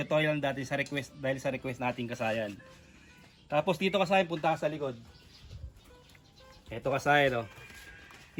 lang dati sa request, dahil sa request natin kasayan. Tapos dito kasayan, punta ka sa likod. Ito kasayan, oh.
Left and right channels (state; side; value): identical; both; correlation 1.00